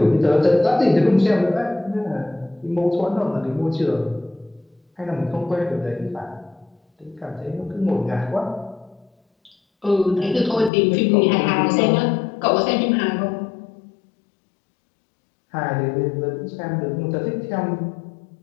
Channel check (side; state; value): right; drops out; at 10.7 s